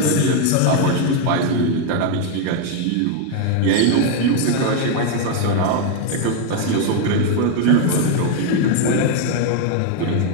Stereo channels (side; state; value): both; different; correlation 0.01